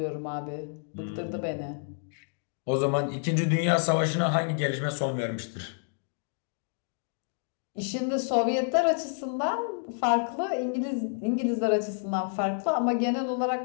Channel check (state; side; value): silent; right; digital silence